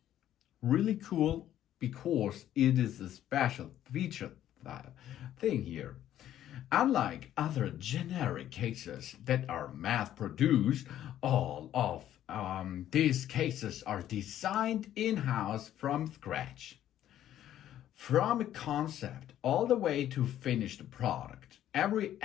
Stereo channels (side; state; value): right; quieter; 11.8 dB